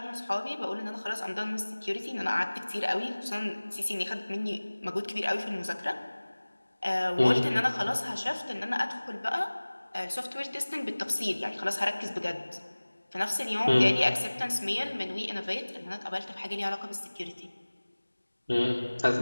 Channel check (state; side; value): inverted; both; correlation -1.00